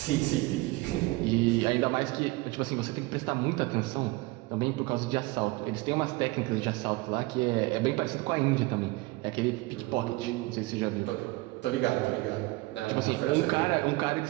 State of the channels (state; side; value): quieter; left; 22.0 dB